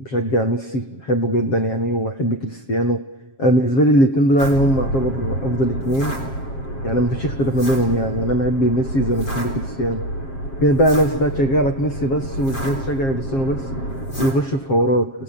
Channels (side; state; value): right; late; 7.5 ms